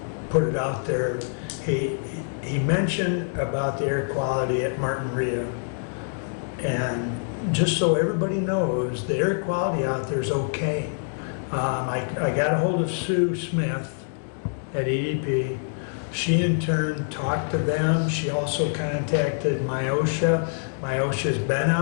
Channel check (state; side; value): silent; right; digital silence